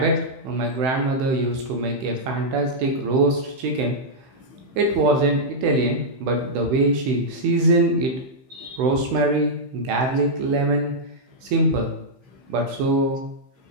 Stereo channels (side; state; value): left; late; 16 ms